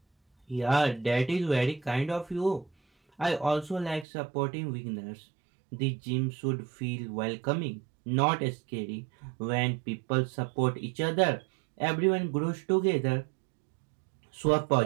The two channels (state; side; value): drops out; left; at 4.0 s